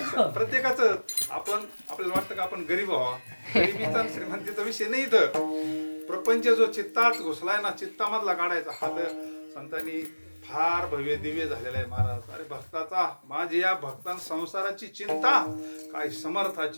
प्रत्येकाचं आपण आपल्याला वाटतं का आपण गरीब व्हावा. गरिबीचा श्रीमंतीचा विषय नाही. इथं प्रपंच जो चित्तात घुसलाय ना, चित्तामधला काढायचा हात संतांनी फार भव्य दिव्य झालेला आहे महाराज. अरे भक्ताचा, माझी या भक्तां संसाराची चिंता, काय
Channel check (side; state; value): both; inverted; correlation -1.00